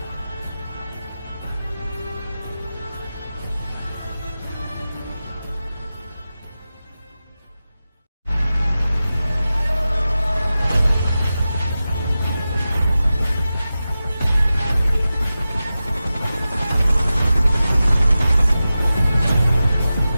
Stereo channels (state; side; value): inverted; both; correlation -0.94